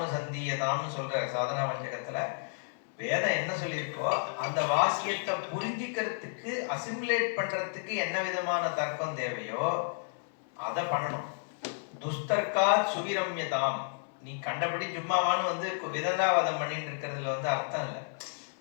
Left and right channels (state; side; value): silent; right; 57 dB below the other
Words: சந்தியதான்னு சொல்ற சாதனா வஞ்சகத்துல வேதம் என்ன சொல்லியிருக்கோ அந்த வாக்கியத்தை புரிஞ்சிக்கிறதுக்கு, அசிமுலேட் பண்றதுக்கு என்ன விதமான தர்க்கம் தேவையோ அதை பண்ணணும். துஸ்தர்க்கா சுவிரம்யதாம். நீ கண்டபடி சும்மாவான்னு விதண்டாவாதம் பண்ணிட்டு இருக்கிறதுல அர்த்தம் இல்லை.